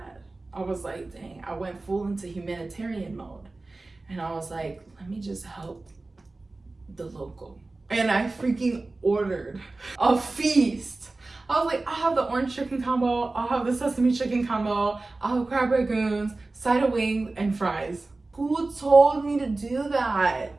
I was like, dang, I went full into humanitarian mode. And I was like, let me just help the local. And I freaking ordered a feast. I was like, I'll have the orange chicken combo, I'll have the sesame chicken combo, I'll have crab rangoons, side of wings, and fries. Who told me to do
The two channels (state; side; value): quieter; left; 3.3 dB